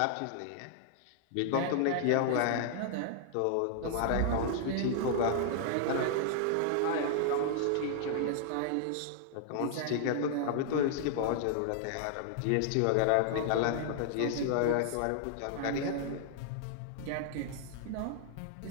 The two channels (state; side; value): different; both; correlation -0.01